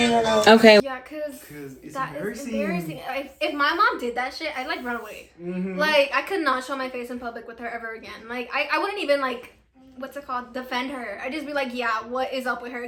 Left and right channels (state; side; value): identical; both; correlation 1.00